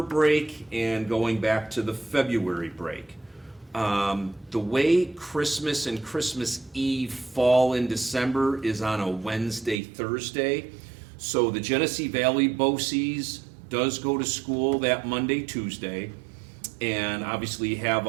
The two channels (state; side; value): drops out; left; at 9.8 s